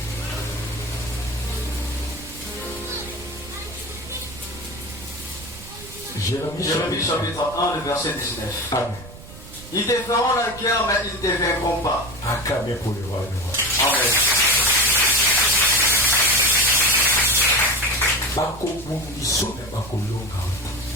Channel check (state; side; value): noise; right; rumble, 17 dB below the sound